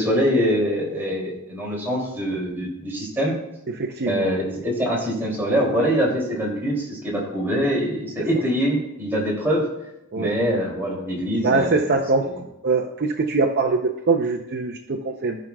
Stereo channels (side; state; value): both; normal; correlation 0.32